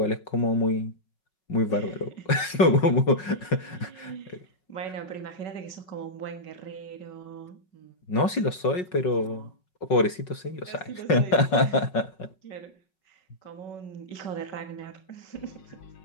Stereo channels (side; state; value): right; late; 5.5 ms